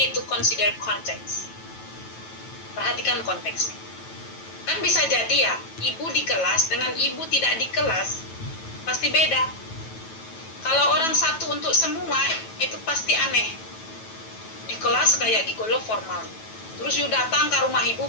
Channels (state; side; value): late; right; 9.1 ms